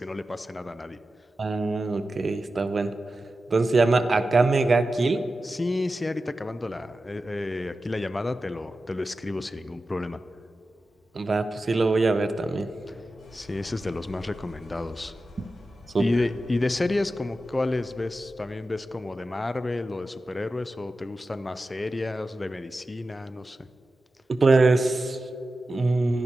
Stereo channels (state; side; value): normal; both; correlation 0.93